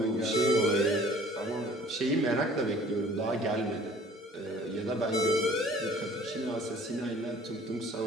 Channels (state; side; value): normal; both; correlation 0.51